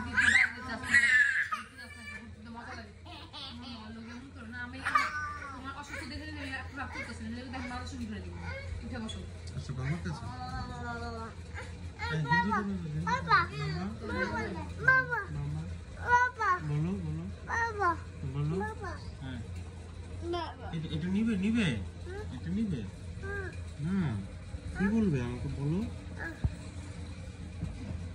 মজা লাগে। না আমি তোমার অসুস্থ দেখে রাগ করতেছে, দেখ মাথা শুরু করে দিব। উঠে বসো। এটা নিবে নিবে, এটা নিবে। হ্যাঁ, কি বলবে আমাকে বলো।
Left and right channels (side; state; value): both; identical; correlation 1.00